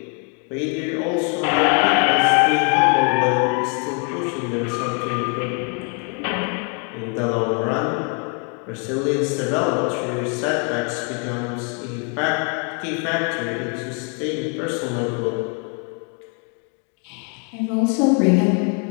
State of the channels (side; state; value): right; quieter; 38.4 dB